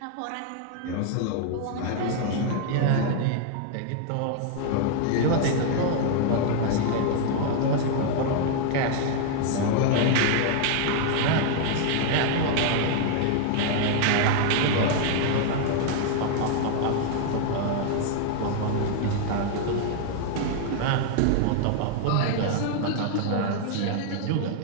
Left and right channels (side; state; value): both; different; correlation 0.00